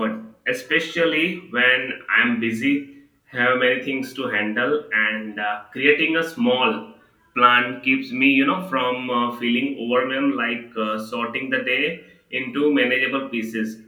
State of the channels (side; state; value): both; identical; correlation 1.00